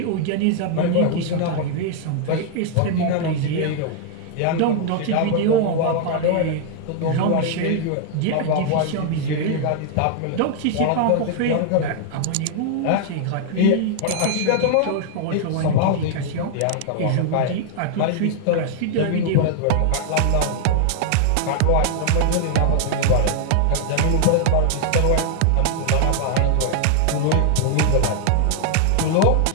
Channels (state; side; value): different; both; correlation 0.00